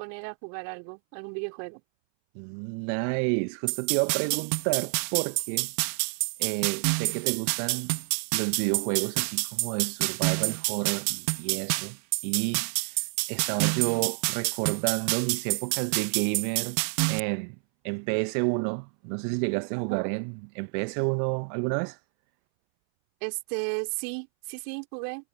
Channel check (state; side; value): silent; left; 59 dB below the other